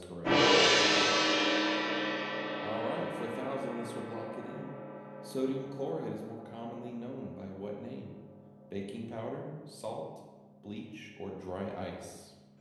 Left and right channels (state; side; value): identical; both; correlation 1.00